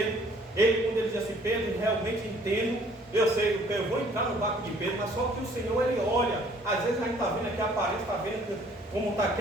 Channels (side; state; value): both; normal; correlation 0.58